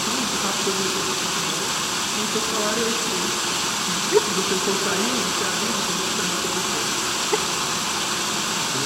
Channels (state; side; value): identical; both; correlation 1.00